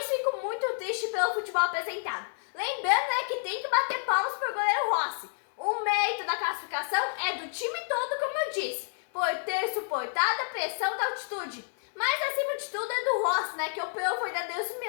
fico muito triste pelo futebol apresentado. Lembrando que tem que bater palmas para o goleiro Rossi. O mérito da classificação é do time todo, como eu disse, por ter suportado a pressão da altitude. Mas acima de tudo é do Rossi, que operou verdadeiros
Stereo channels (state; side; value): silent; right; 58 dB below the other